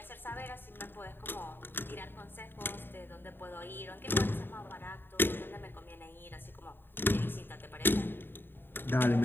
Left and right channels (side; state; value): right; late; 0.098 ms